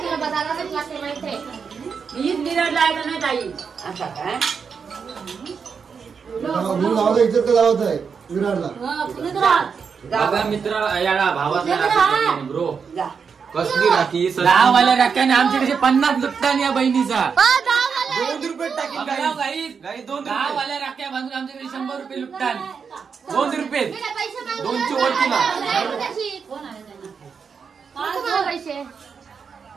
मित्र ब्रो कसली राखी दहावाल्या राख्याने आमच्याकडे 50 लुटतान या बहिणीचा. 2 रुपये टाकीन. 10वाल्या राख्या बांधून आमच्याकडे 100 रुपये लुटतान. 2 रुपये 2ची वरती ना.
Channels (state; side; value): quieter; left; 6.0 dB